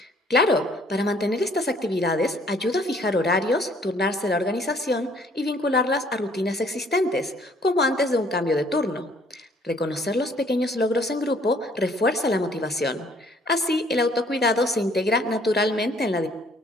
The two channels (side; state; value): both; normal; correlation 0.60